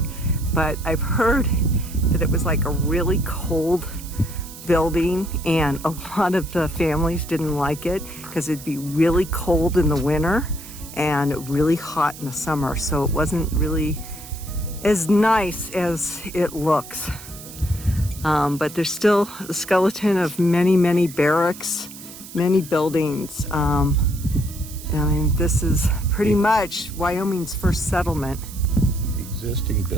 But I've heard that it was like a really cold building, and a lot of the families didn't like it because it'd be really cold in the winter and really hot in the summer. So it wasn't really as nice as it looks. But there's still a skeleton of many, many barracks, many buildings. I mean, this is pretty much Wyoming's first settlement. The existing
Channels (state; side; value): noise; right; hiss, 15 dB below the sound